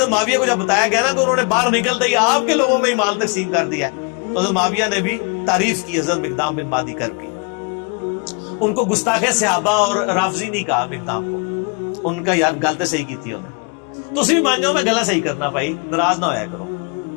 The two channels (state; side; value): quieter; right; 33.1 dB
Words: معاویہ کو جب بتایا گیا نا کہ انہوں نے باہر نکلتے ہی آپ کے لوگوں میں ہی مال تقسیم کر دیا، تو حضرت معاویہ نے بھی تعریف کی حضرت مقدام بن مادی کرب کی۔ ان کو گستاخ صحابہ اور رافضی نہیں کہا مقدام کو، ان کا یار گل تو صحیح کی تھی انہیں، تو اسی بھی مان جاؤ میں گلا صحیح کرنا بھائی، ناراض نہ ہویا کرو۔